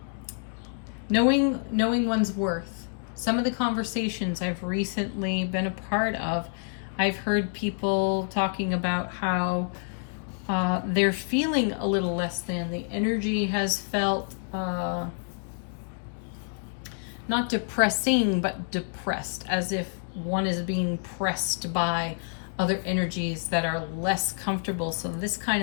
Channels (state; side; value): silent; right; digital silence